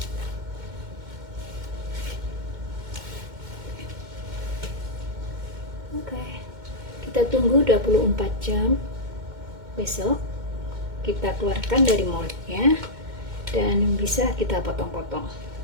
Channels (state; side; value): late; left; 2.1 ms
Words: Oke, kita tunggu 24 jam. Besok kita keluarkan dari moldnya dan bisa kita potong-potong.